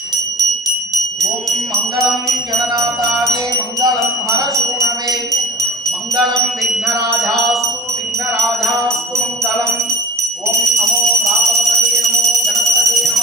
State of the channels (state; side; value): normal; both; correlation 0.39